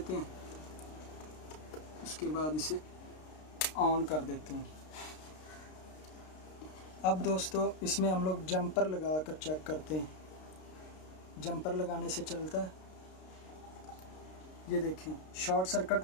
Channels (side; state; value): right; late; 32 ms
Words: हैं, उसके बाद इसे ऑन कर देते हैं। अब दोस्तों इसमें हम लोग जंपर लगा कर चेक करते हैं। जंपर लगाने से चलता है। ये देखें, शॉर्ट सर्किट